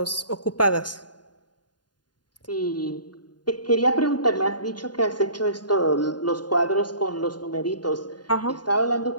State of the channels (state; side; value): late; right; 0.70 ms